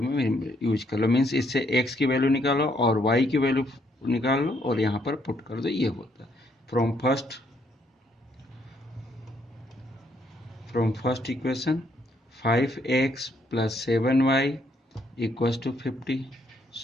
में यूज कर लो. मीन्स इससे x की वैल्यू निकालो और y की वैल्यू निकाल लो और यहाँ पर पुट कर दो. ये होता है from first equation 5x plus 7y equals to 50.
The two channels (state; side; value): normal; both; correlation 0.71